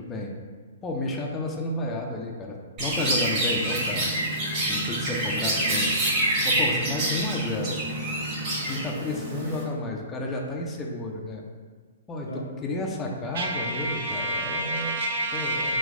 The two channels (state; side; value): inverted; both; correlation -0.33